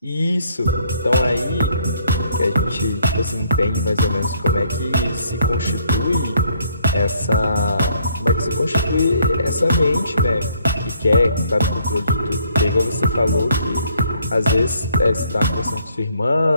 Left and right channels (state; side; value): inverted; both; correlation -0.66